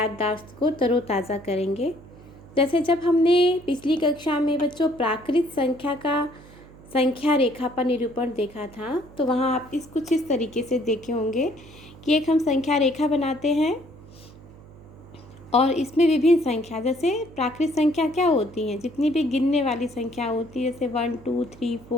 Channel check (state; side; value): noise; right; hum, 21 dB below the sound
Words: को तरोताज़ा करेंगे। जैसे जब हमने पिछली कक्षा में बच्चों प्राकृत संख्या का संख्या रेखा पर निरूपण देखा था, तो वहाँ आप कुछ इस तरीके से देखे होंगे कि एक हम संख्या रेखा बनाते हैं और इसमें विभिन्न संख्या, जैसे प्राकृत संख्या क्या होती हैं, जितनी भी गिनने वाली संख्या होती है, जैसे 1 2 3